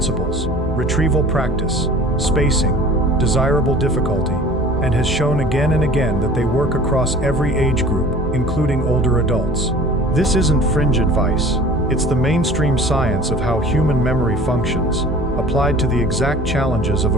retrieval practice, spacing, desirable difficulty, and has shown again and again that they work across every age group, including older adults. This isn't fringe advice. It's the mainstream science of how human memory functions, applied to the exact challenges of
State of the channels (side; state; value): both; normal; correlation 0.45